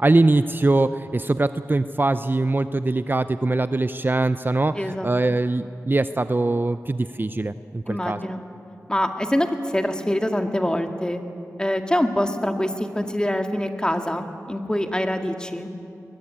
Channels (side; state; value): both; normal; correlation 0.95